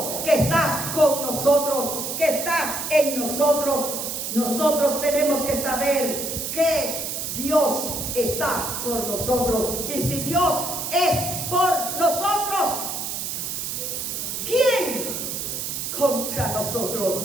que está con nosotros, que está en nosotros. Nosotros tenemos que saber que Dios está por nosotros. Y si Dios es por nosotros, ¿quién contra nosotros?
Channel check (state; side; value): noise; right; hiss, 4 dB below the sound